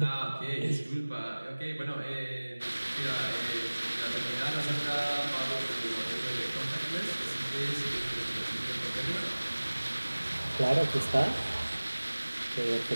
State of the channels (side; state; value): both; inverted; correlation -1.00